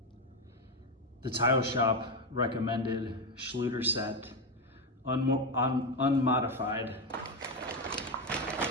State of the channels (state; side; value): normal; both; correlation 0.11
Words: The tile shop recommended Schluter set, unmodified.